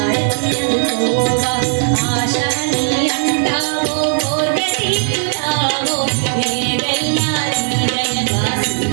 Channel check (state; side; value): silent; left; 68 dB below the other